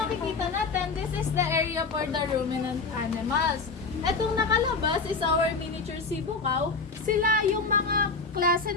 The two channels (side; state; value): right; quieter; 4.3 dB